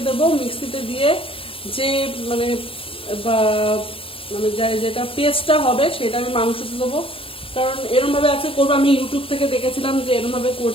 দেবো। মিক্সিতে দিয়ে যে মানে যেটা পেস্টটা হবে সেটা আমি মাংসতে দেবো। কারণ এরমভাবে আজকে করবো, আমি ইউটিউব থেকে দেখেছিলাম যে এরমভাবে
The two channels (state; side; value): late; right; 0.26 ms